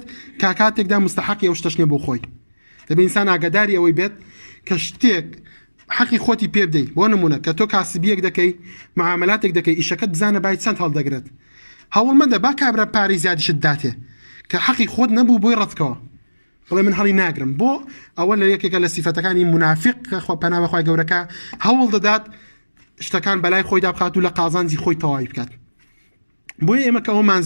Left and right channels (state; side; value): inverted; both; correlation -1.00